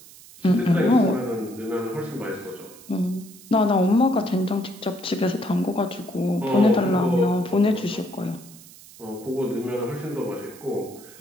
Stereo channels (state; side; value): noise; right; hiss, 20 dB below the sound